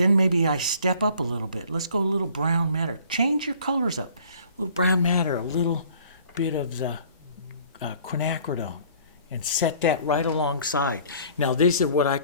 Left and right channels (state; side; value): inverted; both; correlation -0.53